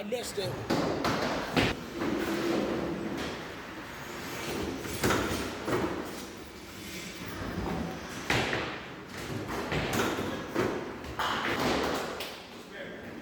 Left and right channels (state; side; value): identical; both; correlation 1.00